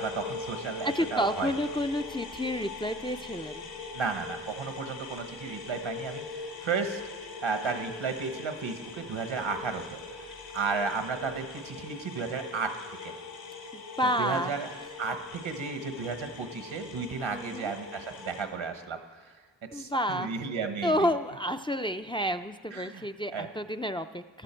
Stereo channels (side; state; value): both; normal; correlation 0.40